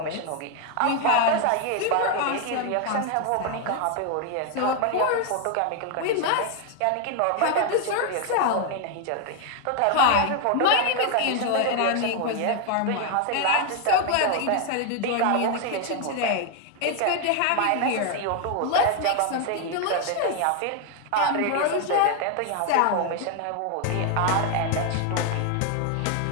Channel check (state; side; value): different; both; correlation 0.01